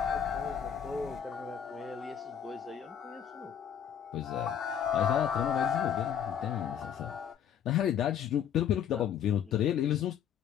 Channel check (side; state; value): right; quieter; 8.7 dB